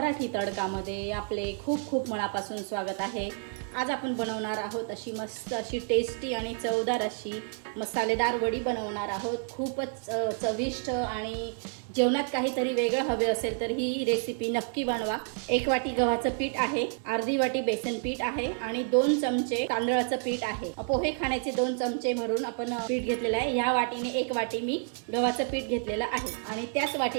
तडकामध्ये आपले खूप खूप मनापासून स्वागत आहे। आज आपण बनवणार आहोत अशी मस्त अशी टेस्टी आणि चवदार अशी मसालेदार वडी बनवणार आहोत। खूपच चविष्ट आणि जेवणात काहीतरी वेगळं हवे असेल तर ही रेसिपी नक्की बनवा। 1 वाटी गव्हाचं पीठ आहे, अर्धी वाटी बेसन पीठ आहे आणि 2 चमचे तांदळाचं पीठ आहे। पोहे खाण्याचे 2 चमचे भरून आपण पीठ घेतलेलं आहे। ह्या वाटीने 1 वाटी मी गव्हाचं पीठ घेतलेलं आहे आणि त्याच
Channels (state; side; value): silent; left; 58 dB below the other